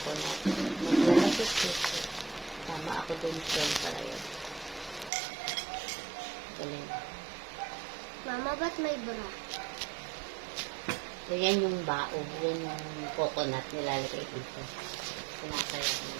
Maglalapit dito. Tama ako dun shell para yun. Galing. Mama, ba't may bra? So, yan yung bao. Yan yung coconut nilalagay dito. Sinasaya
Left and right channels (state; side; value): drops out; left; at 5.1 s